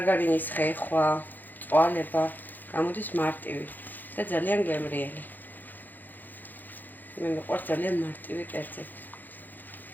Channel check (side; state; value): right; late; 0.086 ms